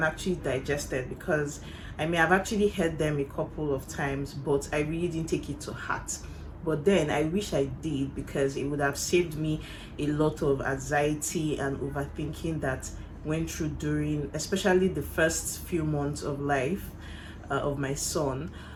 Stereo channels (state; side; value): identical; both; correlation 1.00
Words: actually digested, because I may have actually heard them a couple of times, but I really didn't take it to heart. But then I wish I did, because it would have saved me a lot of anxiety and overthinking that went through during, especially the first few months of life of my son.